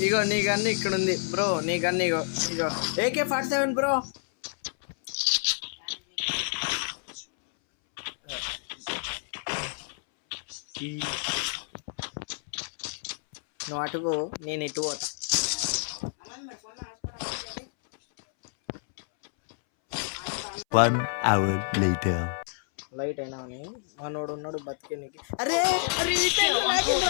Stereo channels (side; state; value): right; silent; 59 dB below the other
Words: ఇగో నీ గన్ను ఇక్కడ ఉంది బ్రో. నీ గన్ను ఇగో AK-47 బ్రో. నువ్వు అటుకు నేను ఇటు పోతా. One hour later. లైట్ అయినా అని మనోడు ఉన్నాడు బతికే నీకు. అరే